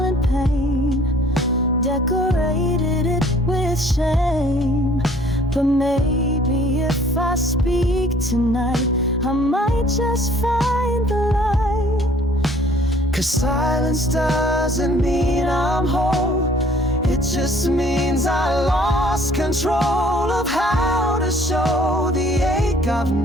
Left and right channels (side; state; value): both; normal; correlation 0.57